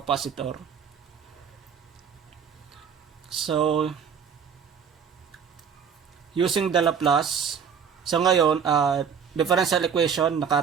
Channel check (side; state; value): left; quieter; 7.1 dB